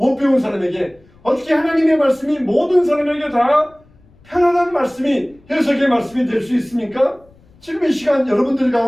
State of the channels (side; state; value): left; noise; rumble, 30 dB below the sound